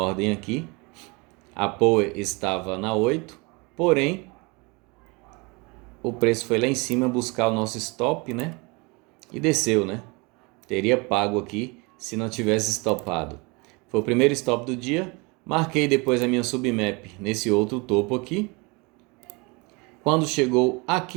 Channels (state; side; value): quieter; left; 27.8 dB